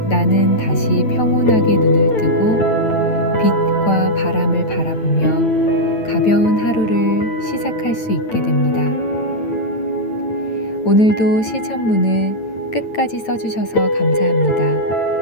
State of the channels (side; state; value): right; late; 9.1 ms